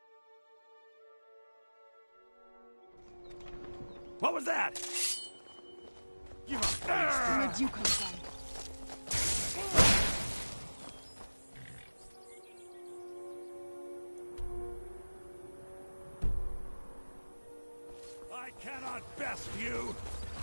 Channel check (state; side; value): inverted; both; correlation -1.00